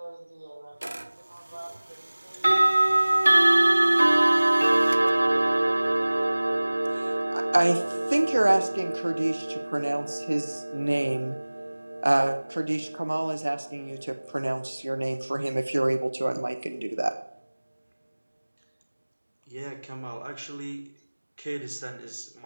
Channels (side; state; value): both; inverted; correlation -1.00